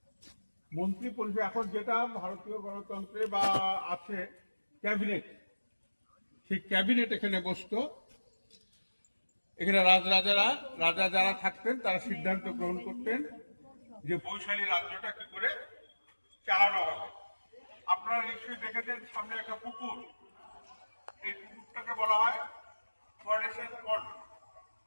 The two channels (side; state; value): both; inverted; correlation -1.00